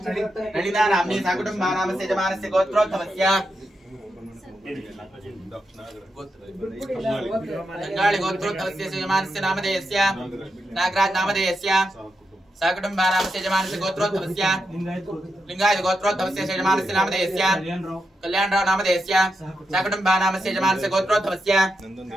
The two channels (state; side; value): normal; both; correlation 0.86